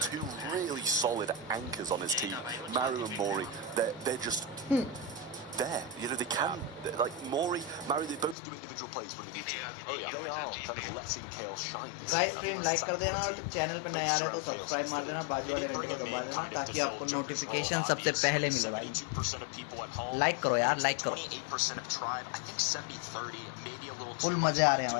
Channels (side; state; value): right; drops out; at 8.3 s